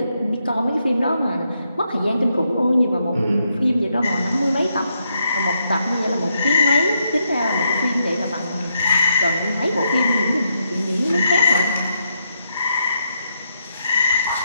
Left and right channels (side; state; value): both; inverted; correlation -0.80